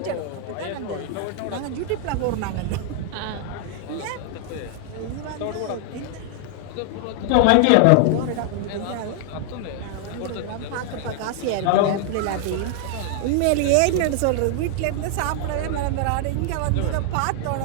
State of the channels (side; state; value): both; different; correlation 0.00